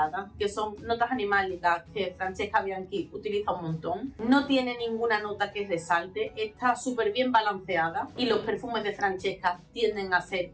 que son notas animálicas que Francesca Bianchi utiliza un montón. No tiene ninguna nota que resalte, está súper bien balanceada y los perfumes de Francesca tienden a ser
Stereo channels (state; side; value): identical; both; correlation 1.00